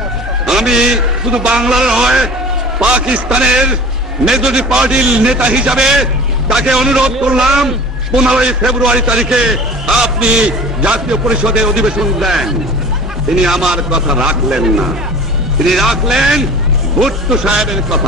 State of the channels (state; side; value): normal; both; correlation 0.41